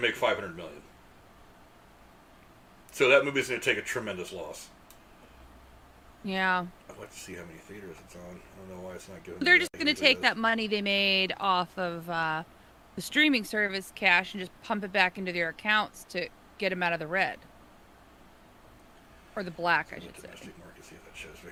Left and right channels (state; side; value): identical; both; correlation 1.00